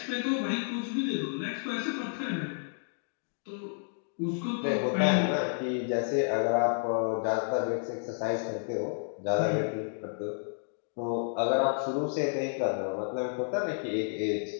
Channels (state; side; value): silent; right; digital silence